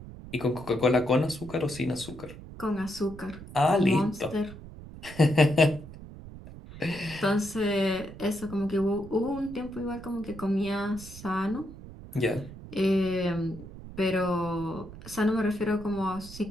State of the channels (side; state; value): right; noise; rumble, 15 dB below the sound